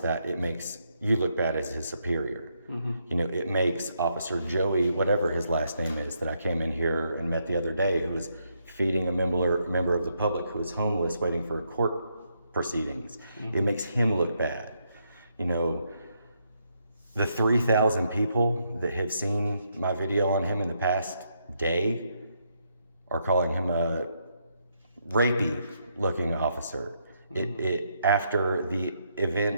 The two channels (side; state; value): both; inverted; correlation -0.77